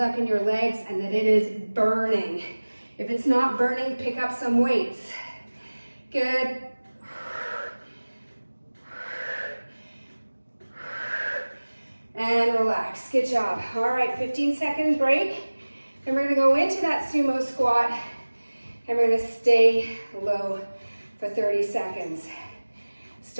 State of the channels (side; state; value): both; inverted; correlation -1.00